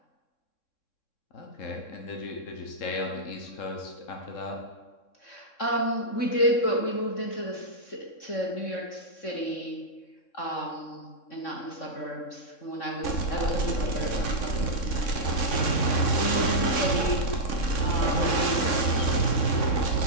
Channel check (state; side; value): late; right; 3.6 ms